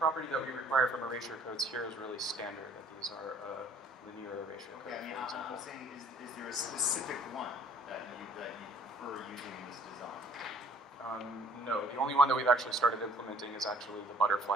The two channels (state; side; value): normal; both; correlation 0.57